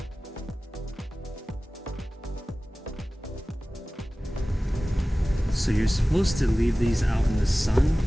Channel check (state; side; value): normal; both; correlation 0.97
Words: So you're supposed to leave these out in the sun